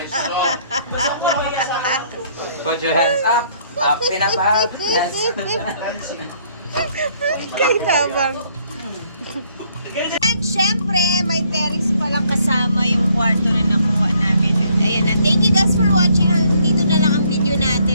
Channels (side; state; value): both; inverted; correlation -0.66